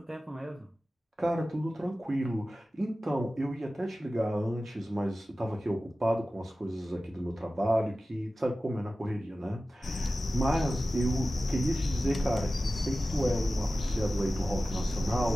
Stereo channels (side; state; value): both; normal; correlation 0.95